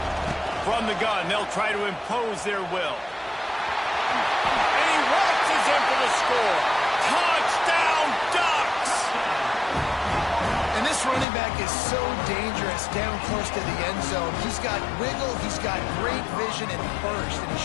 From the gun, they'll try to impose their will. In for the score. Touchdown, Ducks! And this running back is so dangerous down close to the end zone. He's got wiggle, he's got great vision and burst, and he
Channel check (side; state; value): right; drops out; at 11.2 s